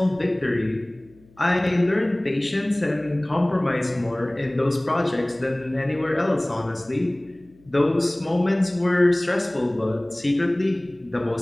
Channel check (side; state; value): left; noise; hum, 29 dB below the sound